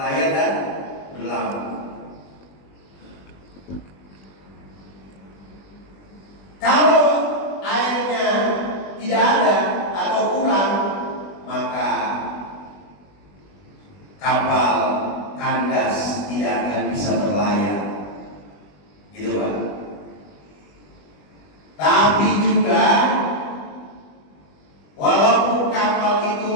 dan berlabuh. Kalau airnya tidak ada atau kurang, maka kapal kandas tidak akan bisa berlayar, gitu Pak. Tapi juga walaupun kapal itu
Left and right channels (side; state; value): right; late; 20 ms